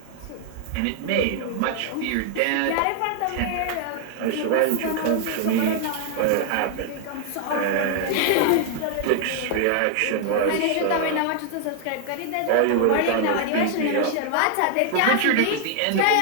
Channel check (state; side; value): different; both; correlation 0.00